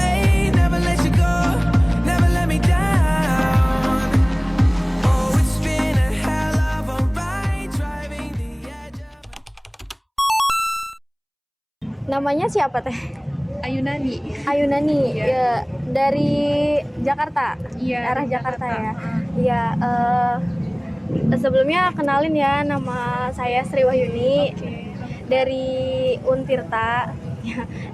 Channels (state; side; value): identical; both; correlation 1.00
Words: Never let you go, never let me down. Oh, it's been a hell of a ride, driving the edge of... Namanya siapa teh? Ayunani. Ayunani, ya, dari Jakarta, arah Jakarta ya. Iya, sebelumnya kenalin ya, nama saya Sri Wahyuni dari Untirta. Ya,